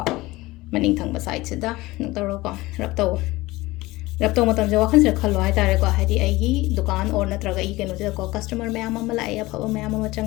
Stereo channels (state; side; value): quieter; right; 19.8 dB